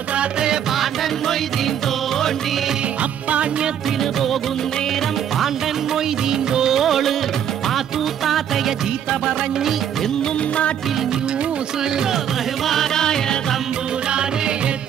താത്തയെ പാണ്ടൻ മൊയ്തീൻ തോണ്ടി. അപ്പാണ്യത്തിന് പോകും നേരം പാണ്ടൻ മൊയ്തീൻ തോള് പാത്തു താത്തയ ചീത്ത പറഞ്ഞി എന്നും നാട്ടിൽ ന്യൂസ്. ബഹുമാനായ തമ്പൂരാനെ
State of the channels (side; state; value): left; quieter; 9.3 dB